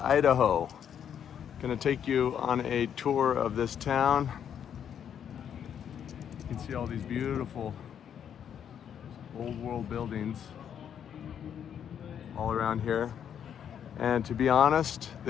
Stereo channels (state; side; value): quieter; right; 8.7 dB